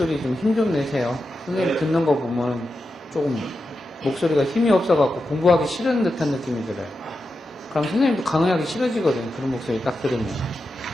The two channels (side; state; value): both; normal; correlation 0.89